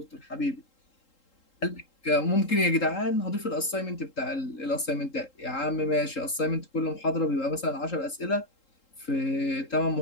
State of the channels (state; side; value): late; right; 3.8 ms